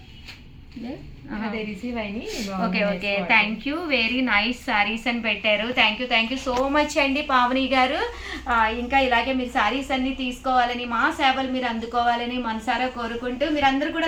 రిసీవ్ అయ్యి okay okay. Thank you, very nice saris అని పెట్టారు. థ్యాంక్ యూ సో మచ్ అండి పావని గారు. ఇంకా ఇలాగే మీరు శారీస్ అన్ని తీసుకోవాలని, మా సేవలు మీరు అందుకోవాలని మనసారా కోరుకుంటూ మీరందరూ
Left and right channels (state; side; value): identical; both; correlation 1.00